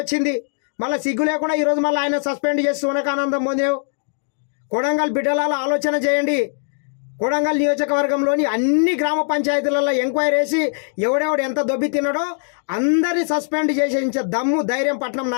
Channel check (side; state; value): right; silent; digital silence